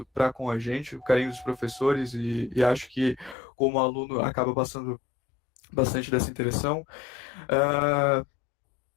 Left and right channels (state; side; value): drops out; right; at 3.4 s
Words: para com a gente, o carinho dos professores, e acho que, como aluno, acaba passando bastante dessa interação.